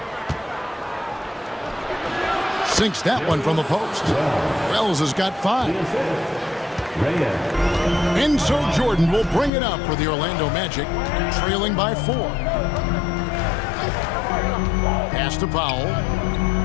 Sinks that one from the post. Wells has got 5. And so Jordan will bring it up for the Orlando Magic, trailing by 4. Pass to Powell.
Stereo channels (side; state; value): right; drops out; at 9.5 s